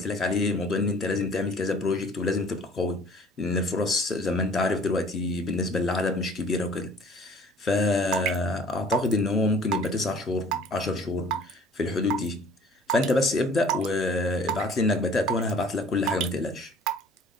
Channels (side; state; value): both; normal; correlation 0.51